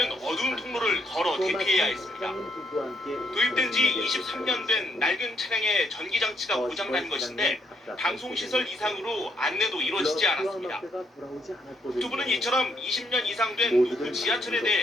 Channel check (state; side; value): normal; both; correlation 0.73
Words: 어두운 통로를 걸어 대피해야 했습니다. 도입된 지 23년 된 낡은 차량의 전기장치가 고장난 것인데 방송시설 이상으로 안내도 이루어지지 않았습니다. 두 분은 이처럼 20년 이상 된 노후 지하철에